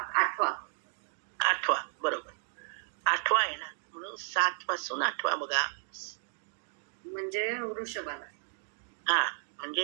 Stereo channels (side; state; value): left; silent; digital silence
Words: 8वा. 8वा बरोबर. 8वा आहे ना म्हणून 7 पासून 8वा बघा. म्हणजे वृषभाला. हा